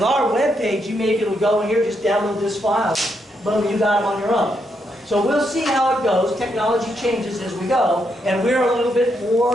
our web page, you may be able to go in here, just download this file. Boom, you got it on your own. So we'll see how it goes. Technology changes as we go, and we're a little bit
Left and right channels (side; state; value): both; normal; correlation 0.79